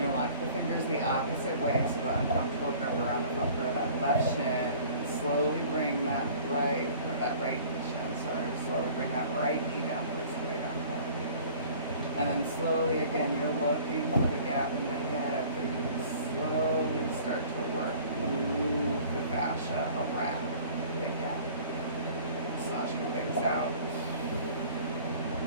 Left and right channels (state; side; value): inverted; both; correlation -0.49